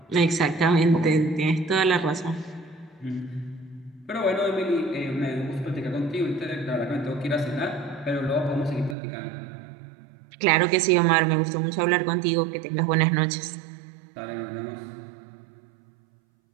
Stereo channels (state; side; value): drops out; left; at 9.0 s